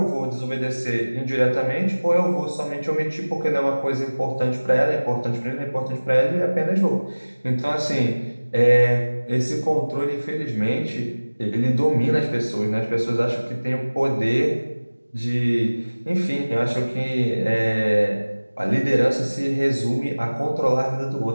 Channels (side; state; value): both; inverted; correlation -1.00